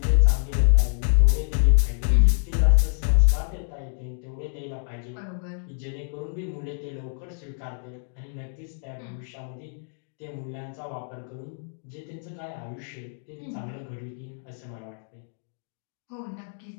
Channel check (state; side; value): silent; right; digital silence